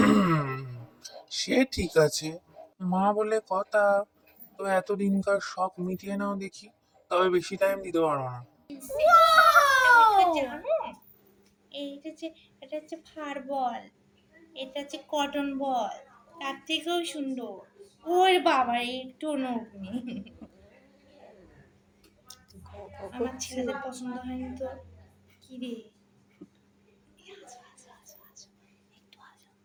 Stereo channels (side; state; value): both; identical; correlation 1.00